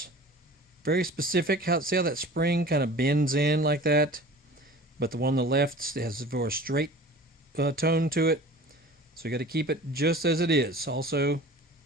Very specific. See how that spring kind of bends in like that? But the one on the left has a more straight tone to it. So you got to keep it just as it is. Also,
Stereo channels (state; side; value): normal; both; correlation 0.42